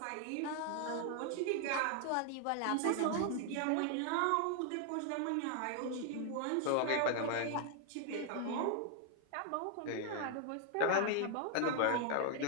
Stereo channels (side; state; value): both; different; correlation 0.00